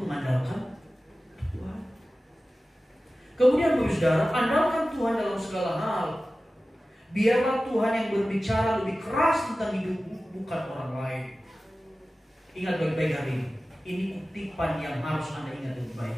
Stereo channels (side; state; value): both; normal; correlation 0.95